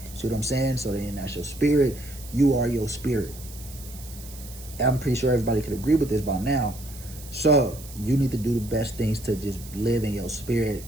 See what I'm saying? So then that's your spirit. You are your spirit. I'm pretty sure everybody could agree with this by now. So you need to do the best things to just live in your spirit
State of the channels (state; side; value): noise; right; hiss, 17 dB below the sound